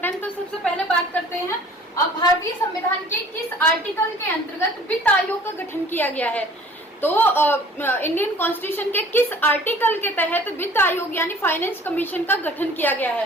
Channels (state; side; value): normal; both; correlation 0.50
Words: तो सबसे पहले बात करते हैं भारतीय संविधान के किस आर्टिकल के अंतर्गत वित्त आयोग का गठन किया गया है। तो इंडियन कॉन्स्टिट्यूशन के किस आर्टिकल के तहत वित्त आयोग यानी फाइनेंस कमीशन का गठन किया गया